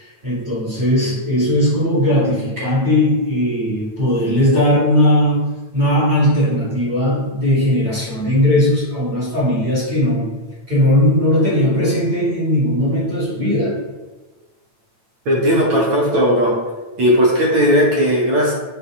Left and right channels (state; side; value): late; left; 9.0 ms